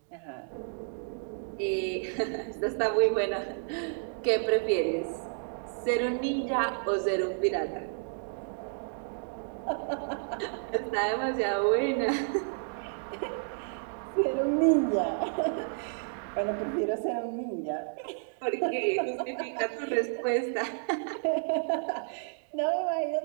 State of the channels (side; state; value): left; silent; digital silence